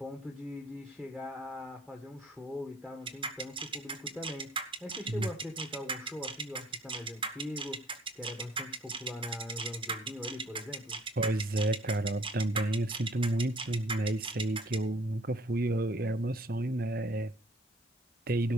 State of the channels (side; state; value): both; normal; correlation 0.59